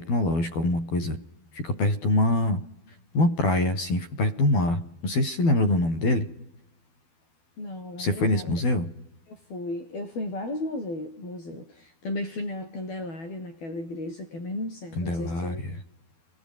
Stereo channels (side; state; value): right; late; 12 ms